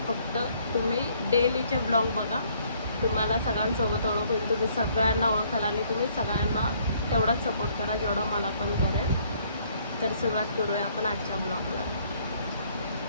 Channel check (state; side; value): inverted; both; correlation -0.64